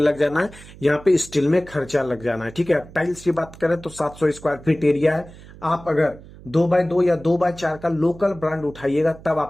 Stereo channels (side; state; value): right; noise; hum, 19 dB below the sound